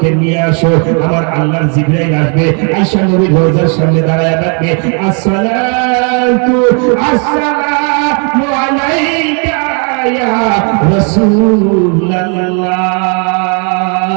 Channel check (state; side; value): quieter; left; 38.1 dB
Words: নিয়ে আসো। আমার আল্লাহর জিবরাইল আসবে, আয়েশা নবীর রওজার সামনে দাঁড়ায় থাকবে, আসসালাতু আসসালামু আলাইকা ইয়া রাসূলুল্লাহ,